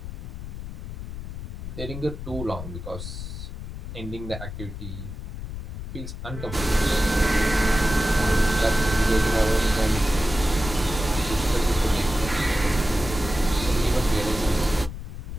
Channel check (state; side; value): noise; left; rumble, 8 dB below the sound